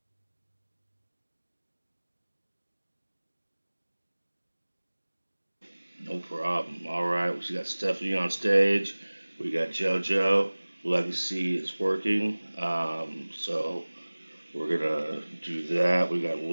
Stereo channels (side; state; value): both; inverted; correlation -1.00